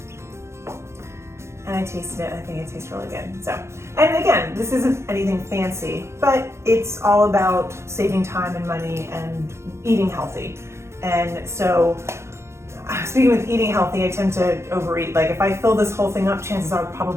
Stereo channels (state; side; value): late; left; 0.13 ms